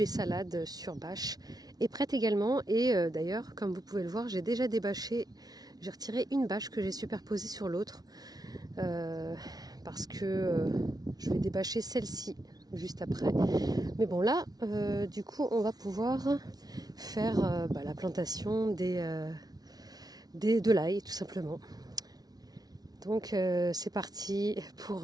salades sur bâche, est prête également. Et d'ailleurs, comme vous pouvez le voir, j'ai déjà débâché, j'ai retiré une bâche que j'ai superposée sur l'autre parce que je vais débâcher celle-ci juste après. Mais bon là, du coup, on va pouvoir faire la plantation de l'ail tout simplement. Donc c'est parti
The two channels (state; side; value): late; left; 0.19 ms